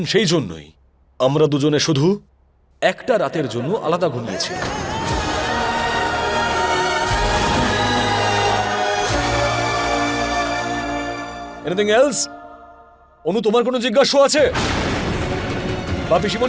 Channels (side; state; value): both; identical; correlation 1.00